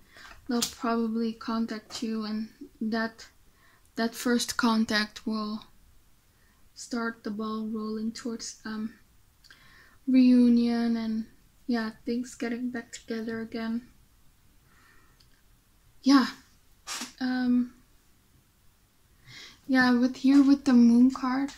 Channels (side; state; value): both; identical; correlation 1.00